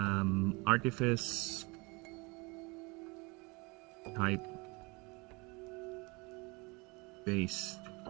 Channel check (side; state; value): left; quieter; 27.0 dB